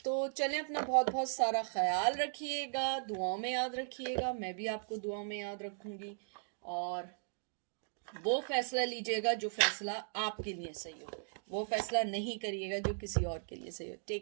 तो चलें, अपना बहुत बहुत सारा ख्याल रखिएगा, दुआओं में याद रखिएगा, मैं भी आपको दुआओं में याद रखूंगी। और वो फैसला लीजिएगा जो फैसला आपके लिए सही हो, वो फैसला नहीं करिएगा जो किसी और के लिए सही हो।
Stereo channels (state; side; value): silent; left; digital silence